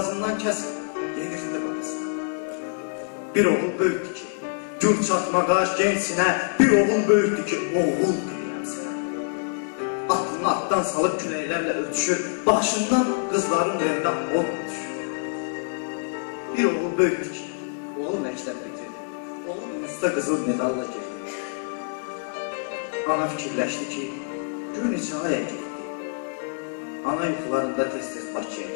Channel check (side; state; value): right; silent; digital silence